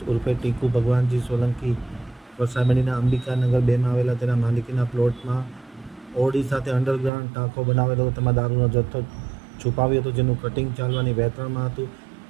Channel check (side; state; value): left; drops out; at 7.1 s